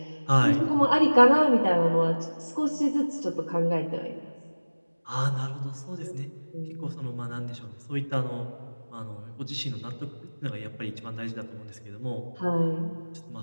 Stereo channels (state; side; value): inverted; both; correlation -1.00